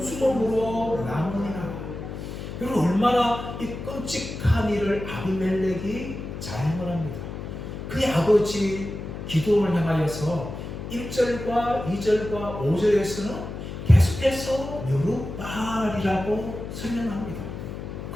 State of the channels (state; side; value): noise; left; hum, 8 dB below the sound